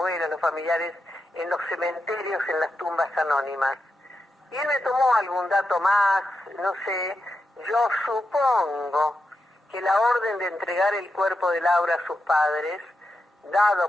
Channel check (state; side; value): normal; both; correlation 0.87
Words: los familiares, en los cementerios, en las tumbas anónimas. Y él me tomó algún dato más, no sé, yo supongo que la orden de entregar el cuerpo de Laura a sus padres,